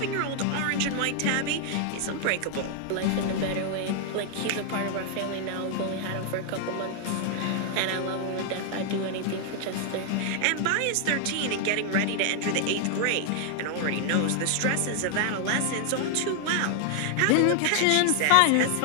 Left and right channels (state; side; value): different; both; correlation 0.00